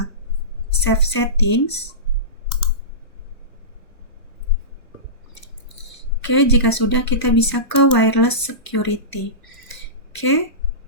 save settings. Oke, jika sudah kita bisa ke wireless security. Oke,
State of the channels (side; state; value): right; late; 1.0 ms